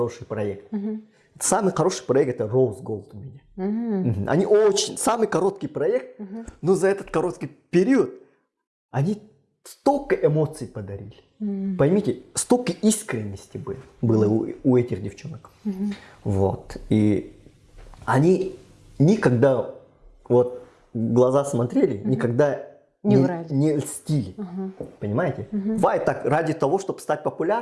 проект. Самый хороший проект это Rose Gold у меня. Они самый короткий проект, но за этот короткий период они столько эмоций подарили. Поймите, столько искренности было у этих девчонок. Вот. И они никогда вот в глаза смотрели, никогда не льстили. Понимаете? Бывает так, ради того, чтобы стать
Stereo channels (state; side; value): identical; both; correlation 1.00